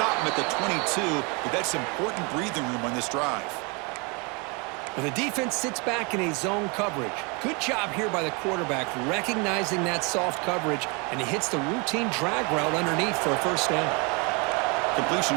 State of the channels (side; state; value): left; quieter; 31.1 dB